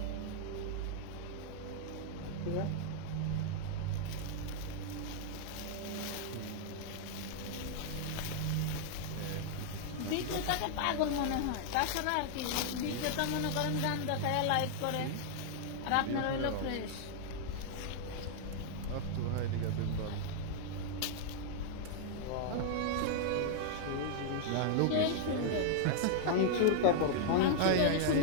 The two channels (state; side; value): different; both; correlation -0.01